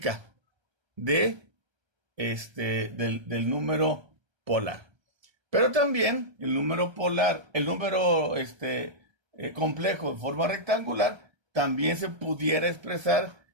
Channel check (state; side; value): late; left; 1.3 ms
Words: del número polar. Pero también el número polar, el número complejo en forma rectangular, también se pudiera expresar